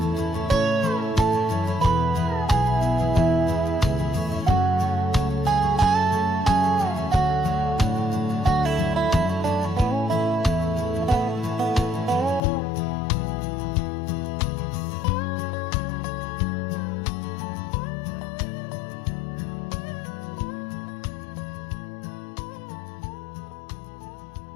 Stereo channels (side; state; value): right; drops out; at 12.4 s